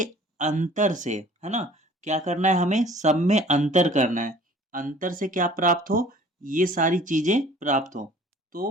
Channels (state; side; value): normal; both; correlation 0.49